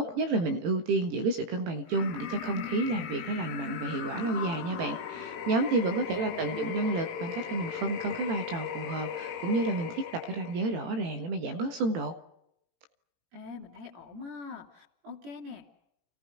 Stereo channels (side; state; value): left; late; 18 ms